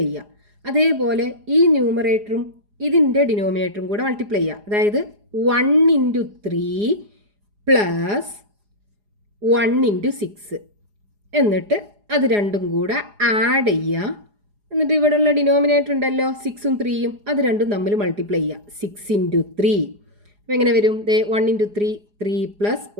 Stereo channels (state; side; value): late; left; 4.8 ms